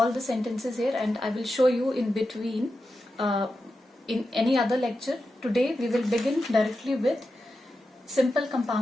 the sentences here and I will show you in between in any other lecture. Today we will begin directly with simple,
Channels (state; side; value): normal; both; correlation 0.90